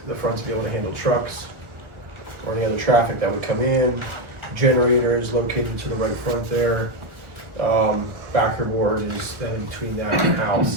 the front to be able to handle trucks or any other traffic that would come in. Generators located to the right front there. Backer board is then between that and the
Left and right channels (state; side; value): late; left; 1.4 ms